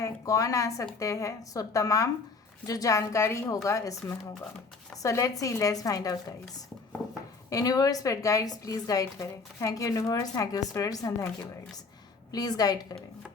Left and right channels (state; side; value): quieter; right; 4.3 dB